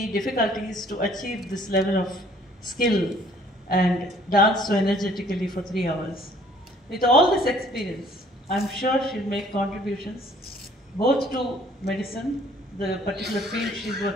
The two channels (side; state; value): both; normal; correlation 0.58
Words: difficulties to achieve this level of skill and dance so energetically for 3 hours. With all this experience, I'm sure she'll make contributions both to medicine, the particular field she's